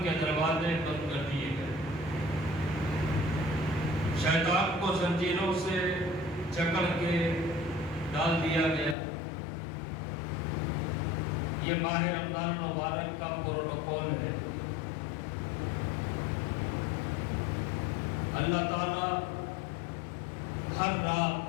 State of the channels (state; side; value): drops out; right; at 9.0 s